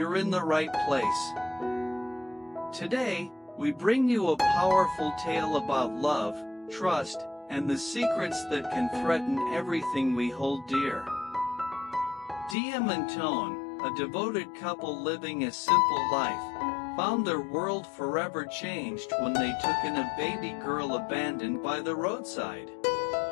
in the right place. Today, we bring you a powerful tale about love, trust, and the secrets that can threaten everything we hold dear. Diem and Toan, a devoted couple living a simple life, found their world forever changed when they took in a baby girl abandoned by the roadside.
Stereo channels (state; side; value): drops out; right; at 12.6 s